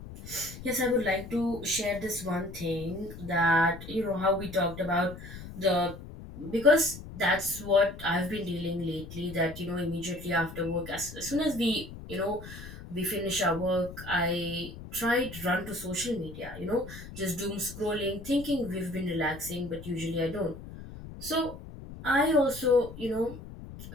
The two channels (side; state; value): left; noise; rumble, 13 dB below the sound